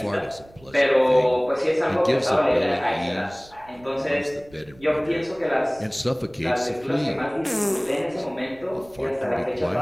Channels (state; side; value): noise; right; rumble, 25 dB below the sound